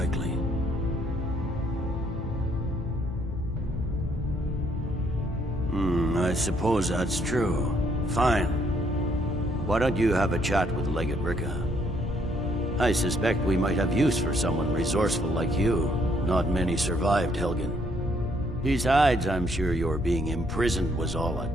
I suppose that's true. Fine. Why don't you have a chat with Legate Ricka? I suspect we might have use for someone resourceful like you. Not many survived, Helgen. Besides, I'm sure your being imprisoned was all a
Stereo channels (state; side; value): normal; both; correlation 0.69